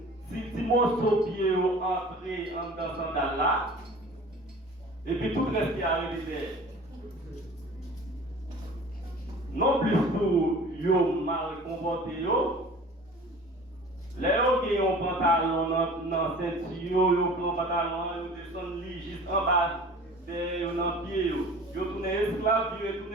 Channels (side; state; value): both; normal; correlation 0.43